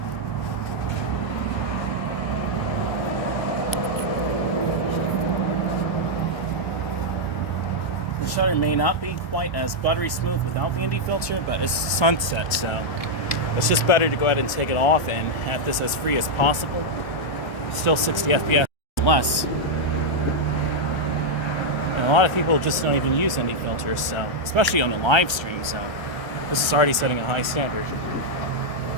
The shutter may not be quite as buttery smooth without the ND filter, but it's sunset, so it's just better to go ahead and take it off and have this as free as possible. Still 60 FPS less. And a lot of people just don't even use ND filters, so especially on the live stream, so this is already setting a high standard.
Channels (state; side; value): late; right; 1.3 ms